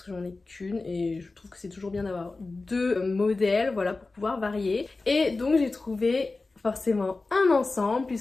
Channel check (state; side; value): quieter; right; 3.6 dB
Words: que j'en ai qu'une et je trouve que c'est toujours bien d'avoir deux modèles, voilà, pour pouvoir varier. Et donc j'ai trouvé forcément un ensemble